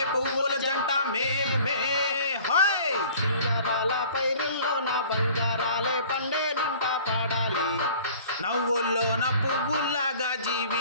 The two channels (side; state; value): both; inverted; correlation -0.48